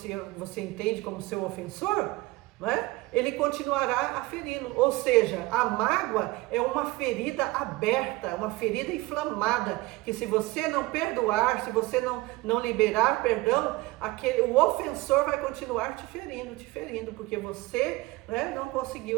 entende como seu ofensor, né, ele continuará aferindo. Ou seja, a mágoa é uma ferida aberta, uma ferida inflamada, que se você não perdoar, se você não liberar perdão, o ofensor vai continuar te ferindo, porque você, né, não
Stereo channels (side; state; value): left; quieter; 20.7 dB